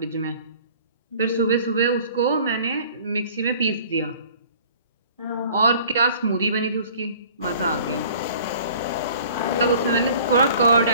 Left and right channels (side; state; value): both; inverted; correlation -0.50